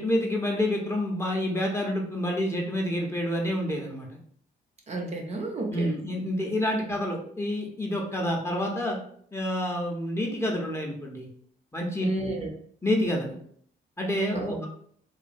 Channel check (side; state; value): both; normal; correlation 0.73